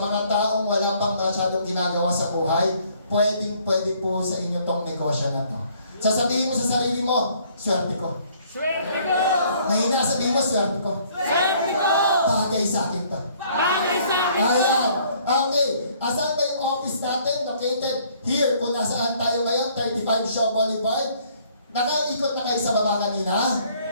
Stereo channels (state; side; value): inverted; both; correlation -0.61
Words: taong wala pang masyadong ginagawa sa buhay, pwede po sa inyo tong negosyo na to. Sasabihin mo sa sarili mo, swerte ko. Swerte ko! Mahina sabihin mo, swerte ko. Swerte ko! Bagay sa akin to. Bagay sa akin! Ayan. Okay. Asan ba yung office natin? Located here. Kung nasaan tayo ngayon, 35 Shaw Boulevard. Nakaikot na kayo sa baba kanina?